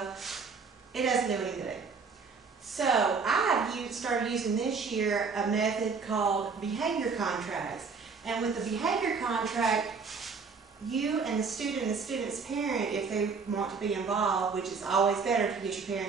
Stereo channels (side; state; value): left; quieter; 5.1 dB